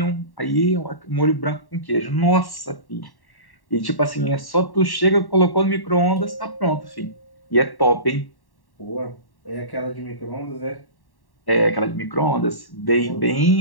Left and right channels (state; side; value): late; right; 1.1 ms